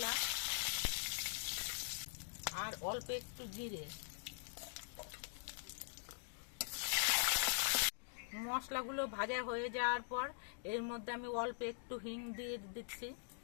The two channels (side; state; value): right; silent; digital silence